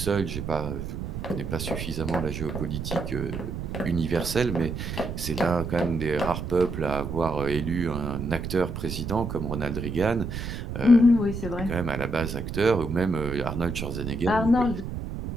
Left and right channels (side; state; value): right; noise; rumble, 6 dB below the sound